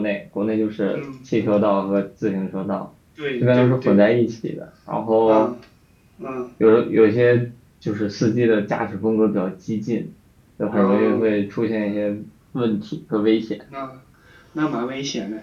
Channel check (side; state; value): both; identical; correlation 1.00